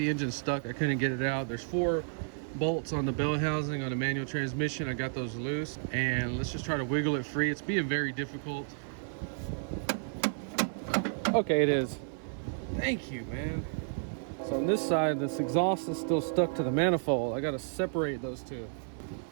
engine stuck. I couldn't get it out. There's 4 bolts on the bell housing on a manual transmission. I got those loose, and let's just try to wiggle it free. It's being very difficult. Okay, it is. Thank you, man. So on this side, this exhaust is still stuck to the manifold. I got to separate those two.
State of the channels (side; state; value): left; silent; 55 dB below the other